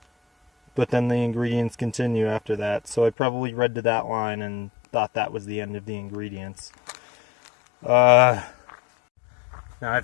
but then the ingredients continue after that. So I probably read to that line and thought that was the end of the ingredients. Now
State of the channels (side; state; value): right; drops out; at 3.2 s